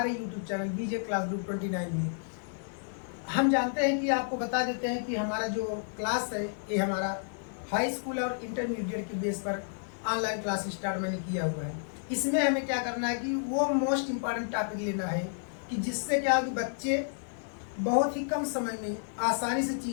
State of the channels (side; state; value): right; silent; 57 dB below the other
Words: YouTube चैनल बीजे क्लास ग्रुप 29 में। हम जानते हैं कि आपको बता देते हैं कि हमारा जो क्लास है ये हमारा हाई स्कूल और इंटरमीडिएट के बेस पर ऑनलाइन क्लास स्टार्ट मैंने किया हुआ है। इसमें हमें क्या करना है कि वो मोस्ट इम्पॉर्टेंट टॉपिक लेना है कि जिससे क्या हो कि बच्चे बहुत ही कम समय में आसानी से